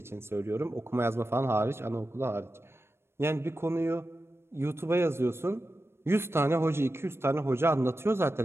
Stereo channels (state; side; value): late; left; 0.12 ms